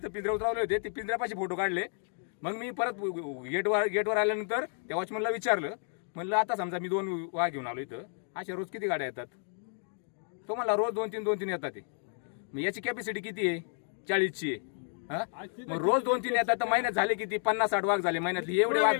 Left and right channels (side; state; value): right; silent; 57 dB below the other